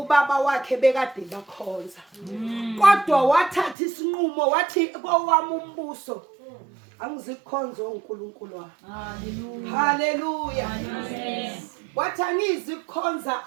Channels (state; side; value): drops out; left; at 3.8 s